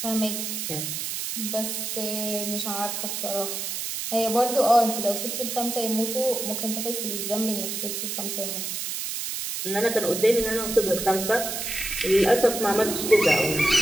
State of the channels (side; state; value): right; noise; hiss, 4 dB below the sound